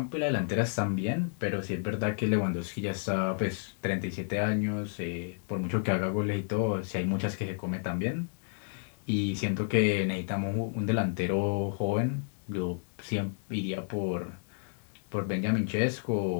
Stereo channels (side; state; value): right; silent; digital silence